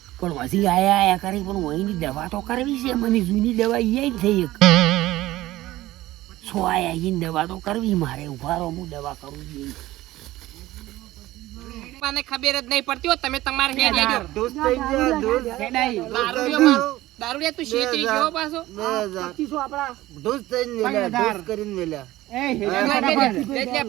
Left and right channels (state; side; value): quieter; left; 16.6 dB